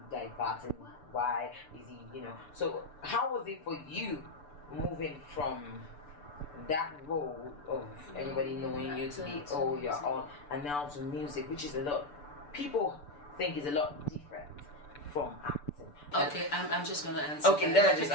diverting? Why is he, you know? So how was it for you moving from that role of everybody knowing you to be, oh, you're on, and now to music, which is a lot, people think is a lot different from acting. Okay, I'm just going to answer. Okay, then I just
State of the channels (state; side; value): late; right; 6.8 ms